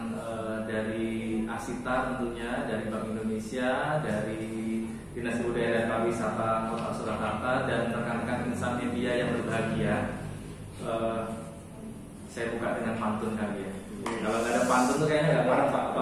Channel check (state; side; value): identical; both; correlation 1.00